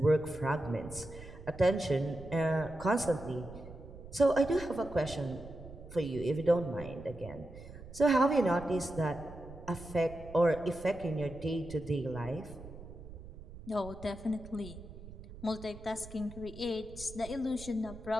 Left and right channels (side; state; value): right; noise; rumble, 15 dB below the sound